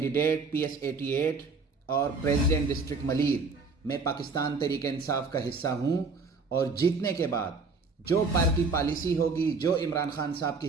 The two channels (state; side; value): quieter; left; 4.3 dB